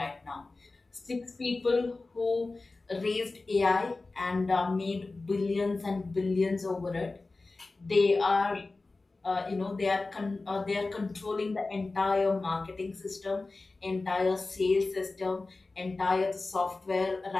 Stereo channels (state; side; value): quieter; right; 3.5 dB